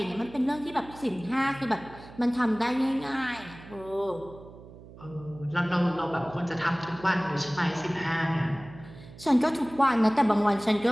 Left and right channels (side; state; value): right; noise; hum, 18 dB below the sound